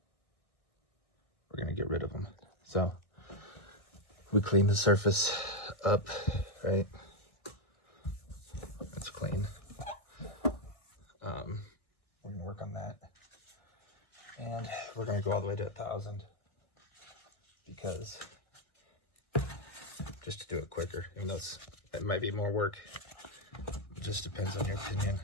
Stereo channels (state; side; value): late; right; 1.6 ms